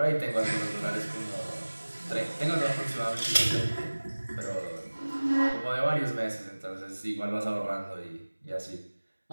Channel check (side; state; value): both; inverted; correlation -1.00